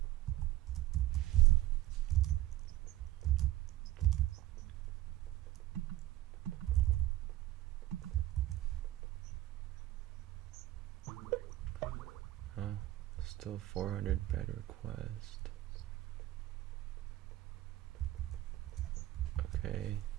Still 400 bed request. Okay.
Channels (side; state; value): left; quieter; 15.2 dB